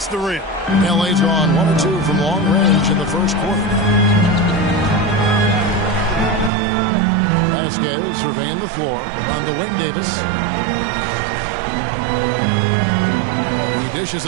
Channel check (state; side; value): drops out; left; at 6.5 s